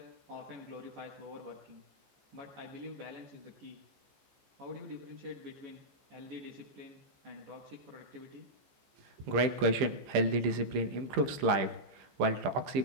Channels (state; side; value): late; left; 15 ms